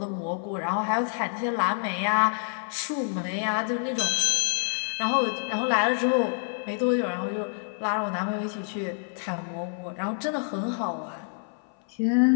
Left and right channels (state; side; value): silent; right; 60 dB below the other